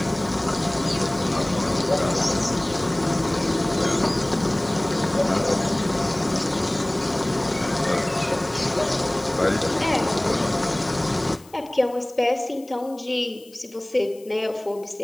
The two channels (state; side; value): noise; left; hiss, 25 dB below the sound